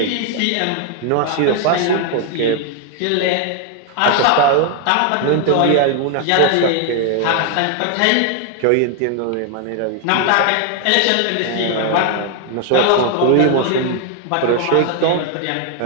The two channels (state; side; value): different; both; correlation 0.00